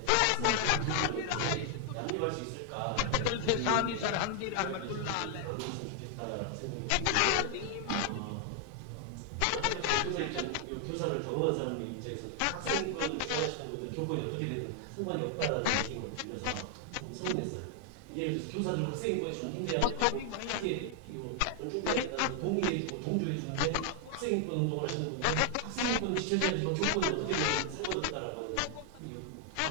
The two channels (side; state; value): both; different; correlation 0.00